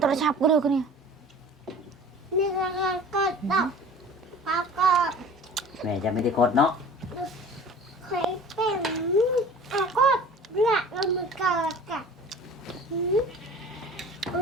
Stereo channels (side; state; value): both; normal; correlation 0.43